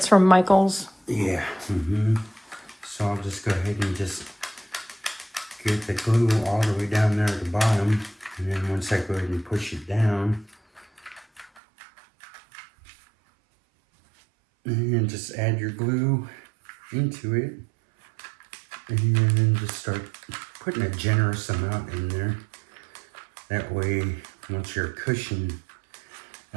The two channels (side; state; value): left; drops out; at 11.6 s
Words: from Michael's. Yeah. So I'll just go ahead and just get the glue all the way down there at the bottom, and then once I go ahead and push it down, and just add your glue into it, and then just start putting a generous amount in there. That way, once your cushion,